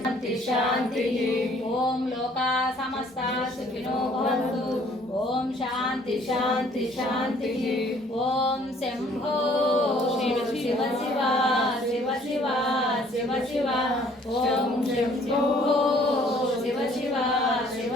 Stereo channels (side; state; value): both; normal; correlation 0.59